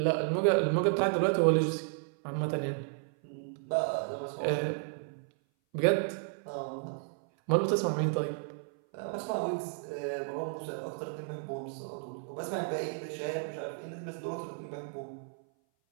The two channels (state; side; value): silent; left; 56 dB below the other